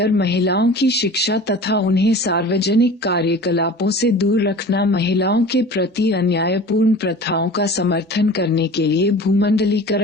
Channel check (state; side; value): normal; both; correlation 0.40